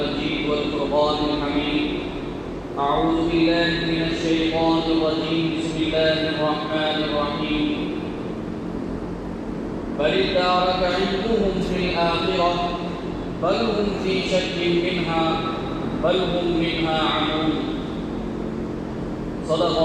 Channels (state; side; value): identical; both; correlation 1.00